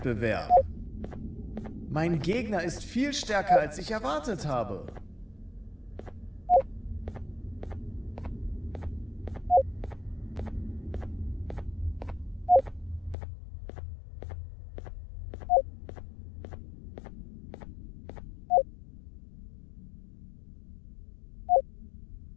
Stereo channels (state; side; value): drops out; right; at 13.2 s